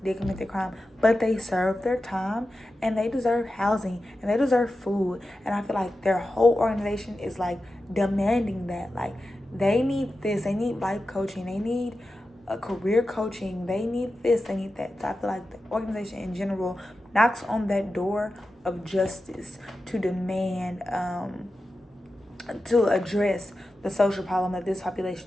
did commit the crime, but they served their time and they deserve housing and they deserve food. And I feel like their whole organization is like demanding that. Like, they need this, they need life coaching, they need a career coaching, they need this, they need that. So I feel like the organization in general knocks on that door of justice to demand to address the social problem that this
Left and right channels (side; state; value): both; normal; correlation 0.92